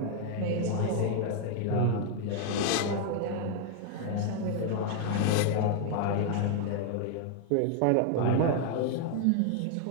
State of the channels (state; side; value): different; both; correlation 0.00